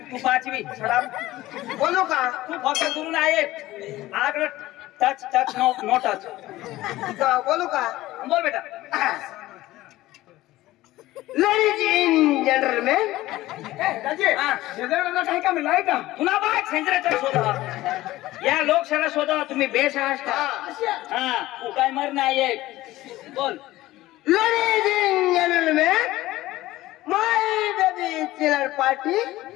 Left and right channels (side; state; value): right; quieter; 16.8 dB